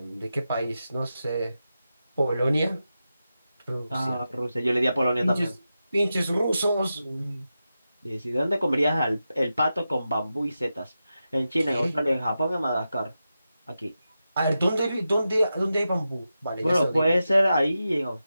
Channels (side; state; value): both; inverted; correlation -0.91